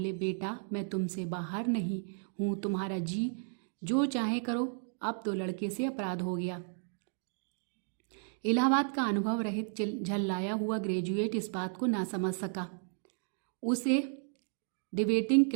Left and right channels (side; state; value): left; silent; 55 dB below the other